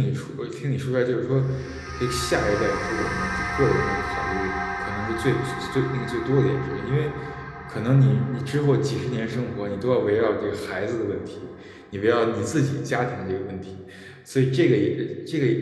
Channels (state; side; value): identical; both; correlation 1.00